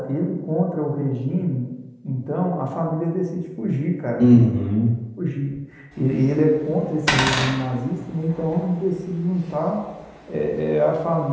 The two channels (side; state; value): both; identical; correlation 1.00